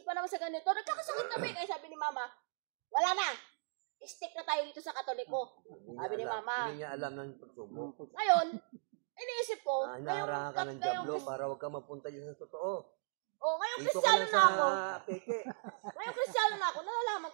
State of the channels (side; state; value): left; silent; digital silence